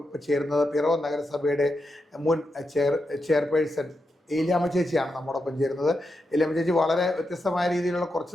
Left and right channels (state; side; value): normal; both; correlation 0.86